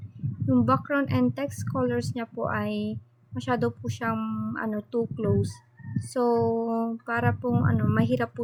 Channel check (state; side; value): identical; both; correlation 1.00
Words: Yung background and text colors niya po ay masyado po siyang too close. So, para pong mahirap po